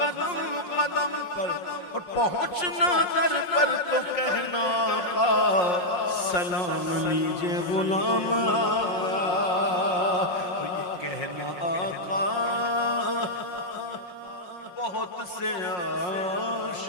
قدم پر اور پہنچنا در پر تو کہنا کا سلام لیجئے غلام آیا اور یہ کہنا آقا بہت سے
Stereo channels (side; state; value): right; late; 5.6 ms